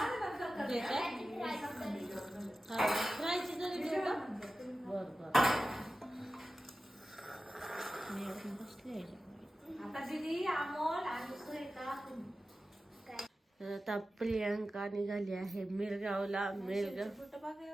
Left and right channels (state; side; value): normal; both; correlation 0.94